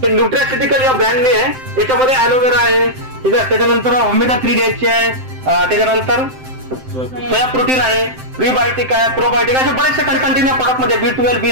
हे न्यूट्रास्युटिकल या ब्रँडने आहे. याच्यामध्ये ॲलोवेरा आहे. ठीक आहे. त्याच्यानंतर ओमेगा 3 द्यायची आहे. त्याच्यानंतर सोया प्रोटीन आहे, प्रीबायोटिक आहे, प्रोबायोटिक असे बरेचसे कंटेंट या प्रोडक्ट मध्ये B12,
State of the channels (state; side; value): late; left; 7.7 ms